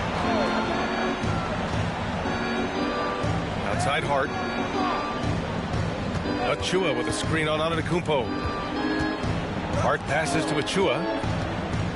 Outside Hart. Achua with a screen on Antetokounmpo. Hart passes to Achua.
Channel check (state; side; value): identical; both; correlation 1.00